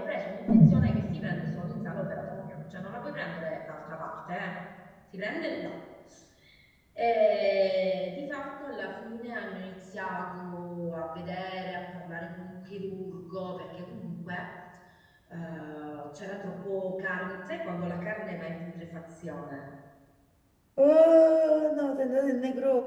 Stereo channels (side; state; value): both; identical; correlation 1.00